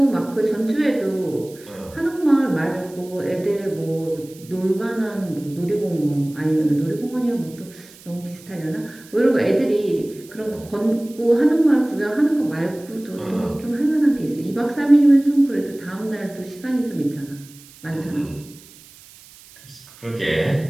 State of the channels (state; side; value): noise; right; hiss, 22 dB below the sound